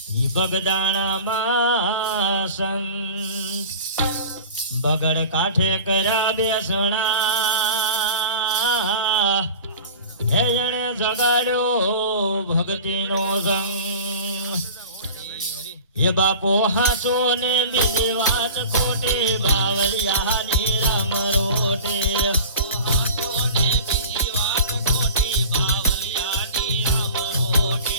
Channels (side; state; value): both; inverted; correlation -0.37